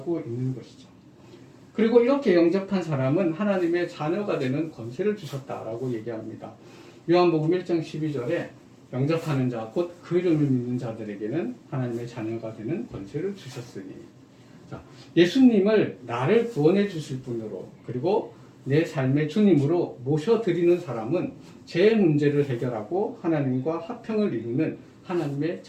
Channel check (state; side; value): identical; both; correlation 1.00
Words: 있는 것이죠. 그리고 이렇게 영접한 사람은 하나님의 자녀가 되는 권세를 주셨다라고 얘기합니다. 요한복음 1장 12절에 영접하는 자, 곧 그 이름을 믿는 자들에게는 하나님의 자녀가 되는 권세를 주셨으니. 자, 예수님을 나를 구원해 주실 분으로 그리고 내 삶의 주님으로 모셔드리는 사람은 제 문제를 해결하고 하나님과 화평을 이루는 하나님의